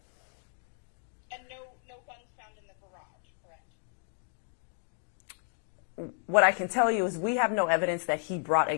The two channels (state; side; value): silent; right; 56 dB below the other